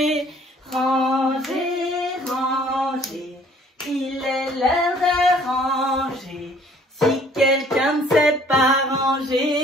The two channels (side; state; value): both; normal; correlation 0.57